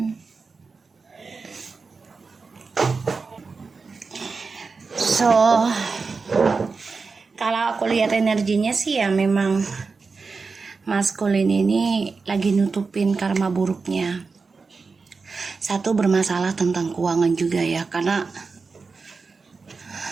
So kalau aku lihat energinya sih ya memang maskulin ini lagi nutupin karma buruknya. Satu, bermasalah tentang keuangan juga ya, karena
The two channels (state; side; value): quieter; left; 4.5 dB